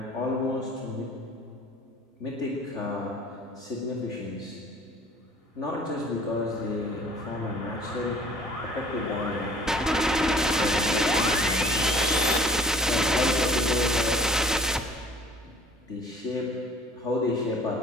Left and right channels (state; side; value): normal; both; correlation 0.51